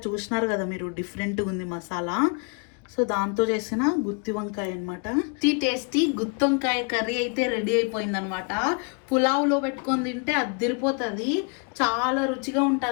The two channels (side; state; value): right; quieter; 35.3 dB